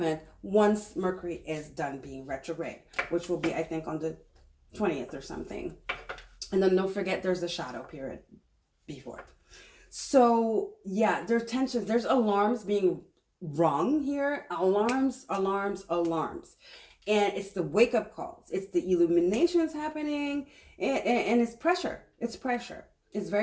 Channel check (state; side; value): identical; both; correlation 1.00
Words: once Mercury is done being retrograde, which will be, I think, on the 20th or something. And then don't forget there's the shadow period before. So yeah, there's tensions, there's alarms being rung here. Alarms. And it's the wake up calls. It's the illuminations happening, and it's pressure. It's pressure. It's